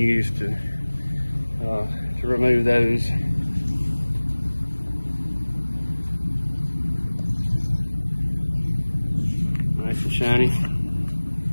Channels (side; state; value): both; inverted; correlation -1.00